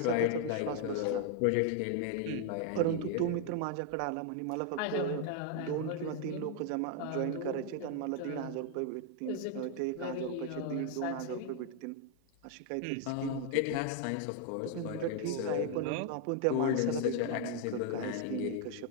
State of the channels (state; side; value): different; both; correlation 0.00